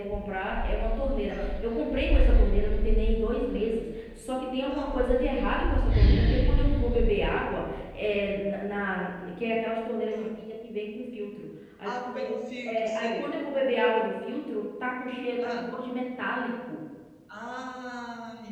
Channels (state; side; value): identical; both; correlation 1.00